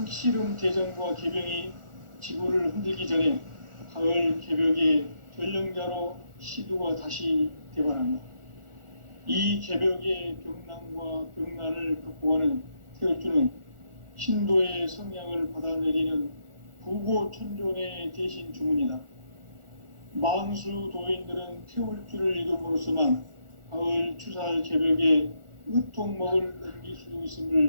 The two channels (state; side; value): late; left; 1.4 ms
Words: 대전과 개병이 지구를 흔들기 전에 가을 개벽의 전령자로 시두가 다시 대발한다. 이 개벽의 병난과 병난을 극복하는 태울주는 신도의 성향을 받아내리는 부고천존의 대신 주문이다. 만수 도인들은 태울주를 이름으로서만 가을 추살 개벽의 의통목을 넘길 수